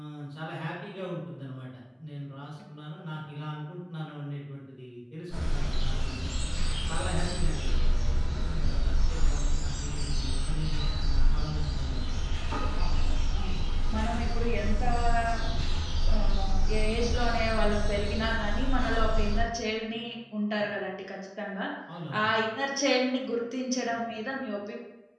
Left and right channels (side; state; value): both; identical; correlation 1.00